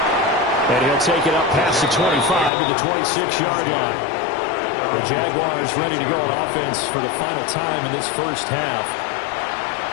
And he'll take it up past the 25 to the 26-yard line. The Jaguars ready to go on offense for the final time in this first half.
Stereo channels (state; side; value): drops out; right; at 2.5 s